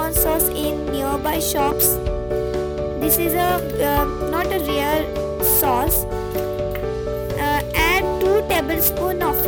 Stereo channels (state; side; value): identical; both; correlation 1.00